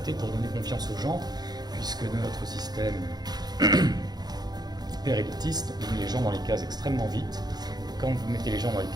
pour donner confiance aux gens, puisque notre système hyper élitiste met les gens dans les cases extrêmement vite. Quand vous mettez les gens dans les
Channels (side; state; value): left; late; 0.19 ms